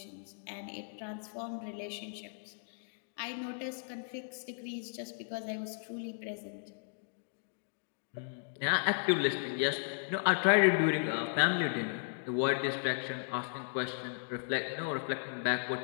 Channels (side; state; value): right; silent; digital silence